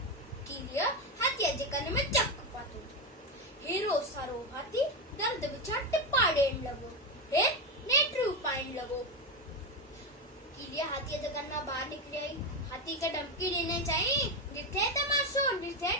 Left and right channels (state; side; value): normal; both; correlation 0.12